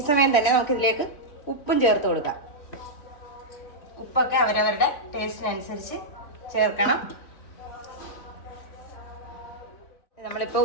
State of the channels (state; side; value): late; right; 3.4 ms